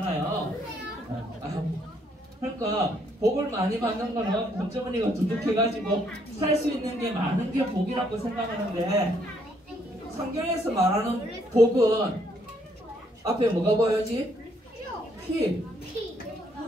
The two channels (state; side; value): normal; both; correlation 0.70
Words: 그러니까 복을 많이 받는 거는 돈주머니가 두둑해가지고 살 수 있는 게 많은 게 복이라고 생각하는데 성경에서 말하는 복은 앞에 뭐가 보여야지? 피.